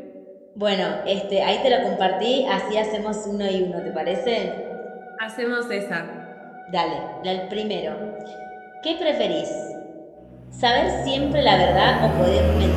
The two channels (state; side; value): identical; both; correlation 1.00